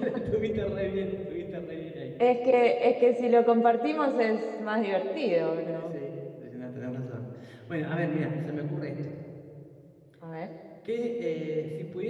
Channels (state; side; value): identical; both; correlation 1.00